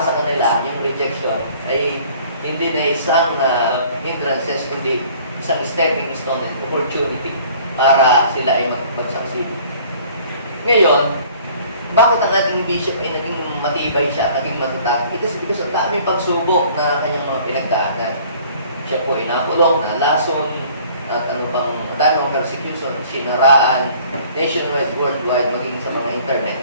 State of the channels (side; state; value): both; inverted; correlation -0.53